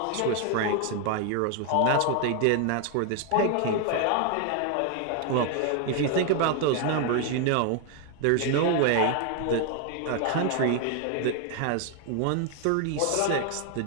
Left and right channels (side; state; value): both; different; correlation 0.00